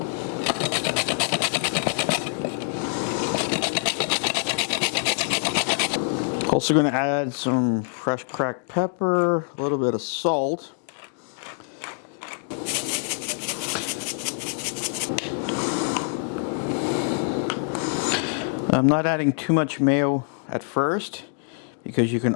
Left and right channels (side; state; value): right; silent; 62 dB below the other